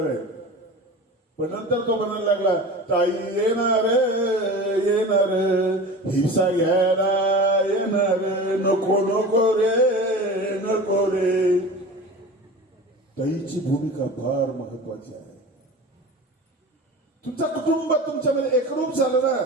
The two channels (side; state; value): both; normal; correlation 0.34